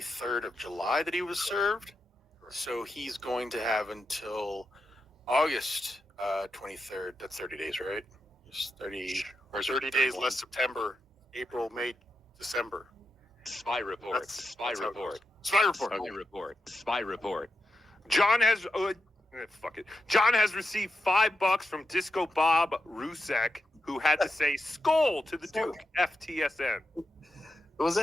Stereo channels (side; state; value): both; normal; correlation 0.86